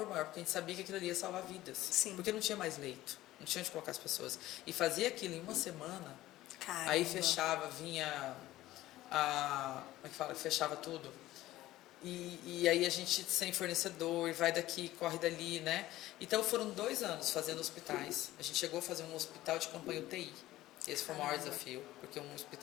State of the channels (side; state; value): right; quieter; 15.8 dB